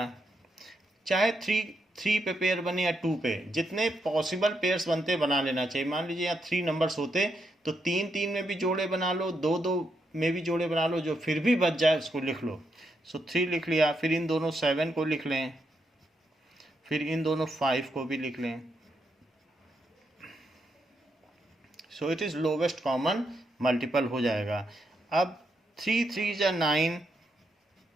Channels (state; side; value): normal; both; correlation 0.81